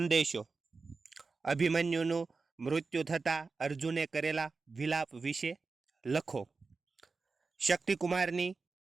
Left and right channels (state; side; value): quieter; left; 4.3 dB